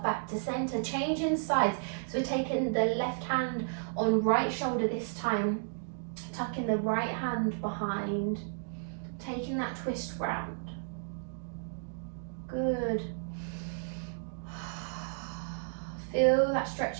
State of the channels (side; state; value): left; silent; digital silence